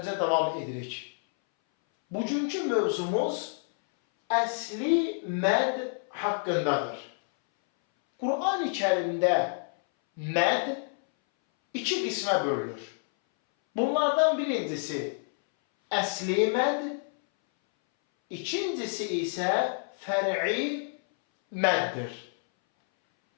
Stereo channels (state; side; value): silent; right; 59 dB below the other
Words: davam edirik. Bugünkü mövzumuz əsli məd haqqındadır. Qur'an-ı Kərimdə məd iki qismə bölünür. Bunlardan birincisi əsli məd, ikincisi isə fər'i məddir.